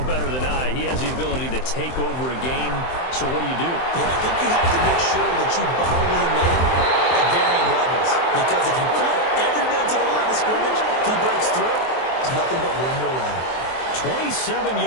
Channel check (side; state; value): right; late; 23 ms